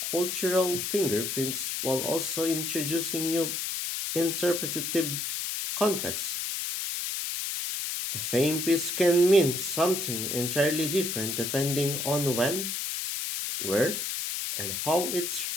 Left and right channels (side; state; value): left; noise; hiss, 2 dB below the sound